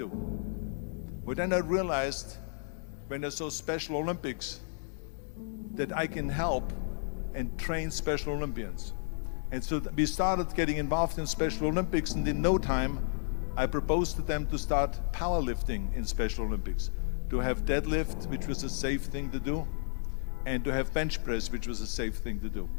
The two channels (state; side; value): silent; right; digital silence